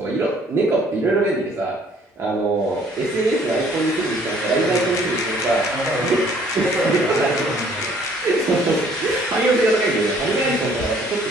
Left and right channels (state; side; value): normal; both; correlation 0.60